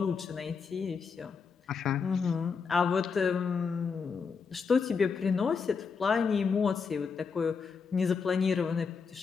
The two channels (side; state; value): right; quieter; 5.6 dB